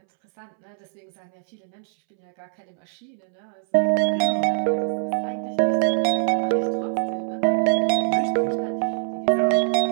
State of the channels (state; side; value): silent; left; 63 dB below the other